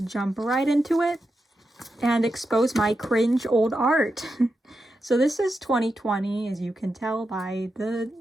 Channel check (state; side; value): normal; both; correlation 0.88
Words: jump right into it and expose my cringe old art. So this is 2020, as you can tell by the